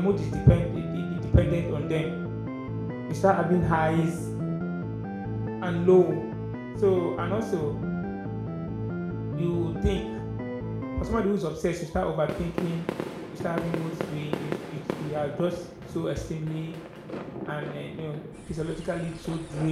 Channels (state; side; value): identical; both; correlation 1.00